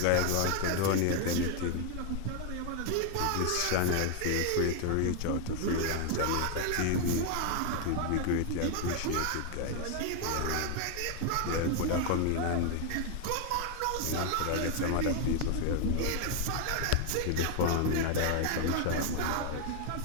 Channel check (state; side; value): different; both; correlation 0.01